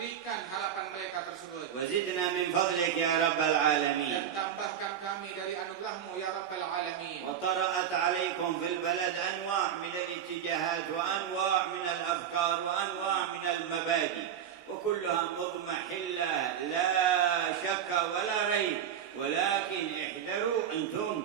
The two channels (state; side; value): quieter; left; 9.0 dB